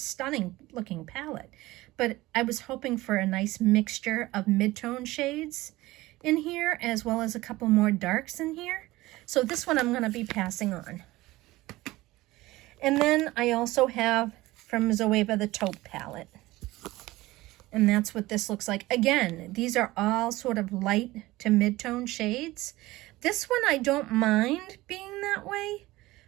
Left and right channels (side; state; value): left; quieter; 18.7 dB